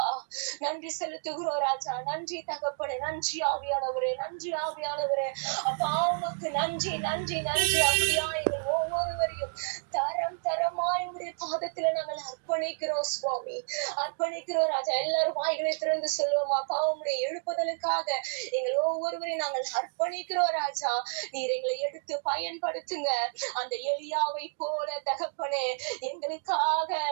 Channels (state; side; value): silent; left; digital silence